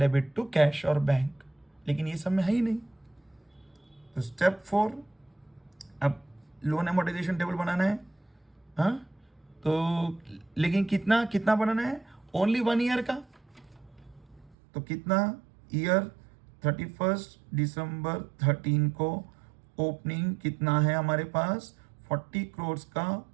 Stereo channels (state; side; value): drops out; left; at 14.6 s